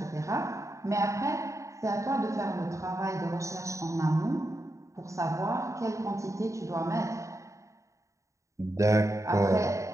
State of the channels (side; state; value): left; late; 0.15 ms